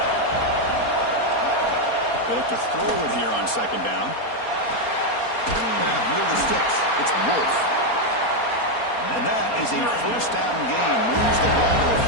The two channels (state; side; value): late; right; 4.3 ms